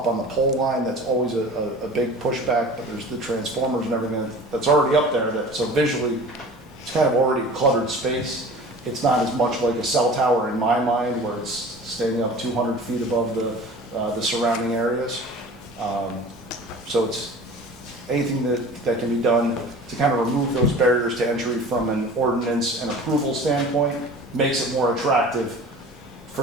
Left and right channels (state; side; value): normal; both; correlation 0.41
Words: on the pole line that's always a big pushback, but there's the transformers and everything that's already up there, so visually it's kind of already cluttered space. It's not as much like a cell tower in my mind, where it's standing up 200 feet above the surrounding areas. So it's anything that can be done to kind of remove those barriers to entry from an ordinance and approval standpoint, makes it more attractive